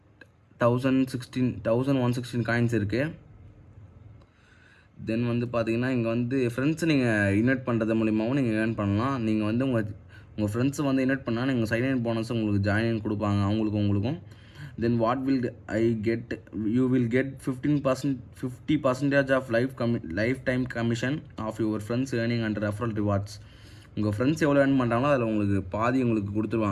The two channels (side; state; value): both; identical; correlation 1.00